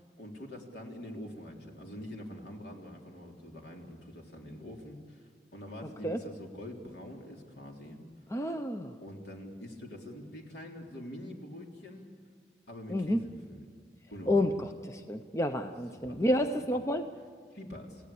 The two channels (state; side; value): normal; both; correlation 0.74